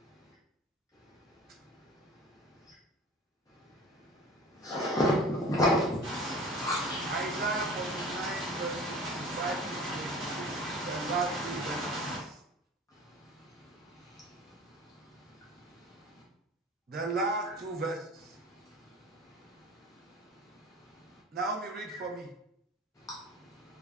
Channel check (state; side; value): normal; both; correlation 0.41